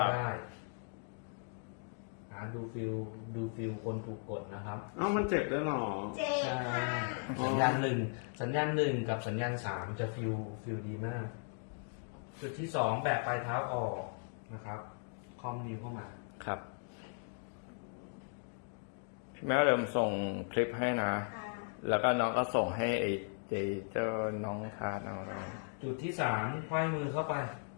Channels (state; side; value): silent; right; 53 dB below the other